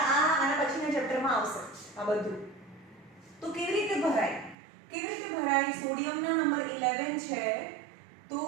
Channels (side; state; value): left; drops out; at 4.5 s